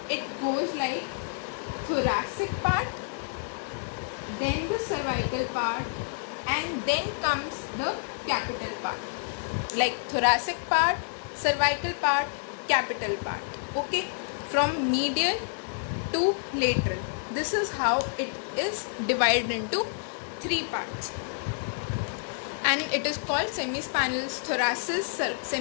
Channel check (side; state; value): right; silent; digital silence